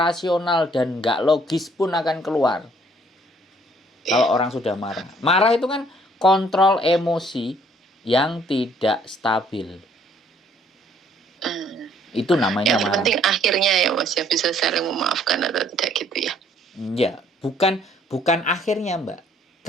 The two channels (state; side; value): normal; both; correlation 0.62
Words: dan enggak logis pun akan keluar. Kalau orang sudah marah. Marah itu kan kontrol emosi yang tidak stabil. Itu namanya yang marah. Yang penting akhirnya ya Mas ya, bisa saling memaafkan atau tidak gitu ya. Ya, bukan akhirnya Mbak.